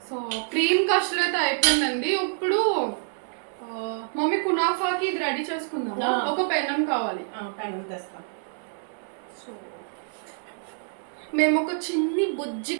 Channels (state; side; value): silent; left; digital silence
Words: సో క్రీమ్ కస్టర్డ్ అయితే అయిపోయిందండి. ఇప్పుడు మమ్మీ కునాఫాకి ఇది రెడీ చేసుకుందాం. ఒక పెనం కావాలి. పెనం తెస్తాం. సో మేము ఒక చిన్ని బుజ్జి